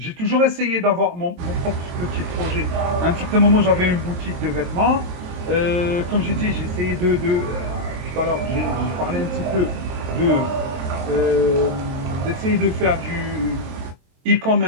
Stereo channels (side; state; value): left; late; 23 ms